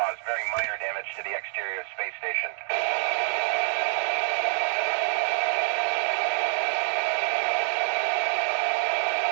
very minor damage to the exterior of the space station.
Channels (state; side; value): silent; left; digital silence